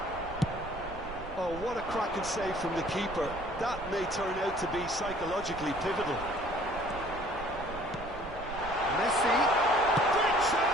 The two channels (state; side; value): noise; right; rumble, 13 dB below the sound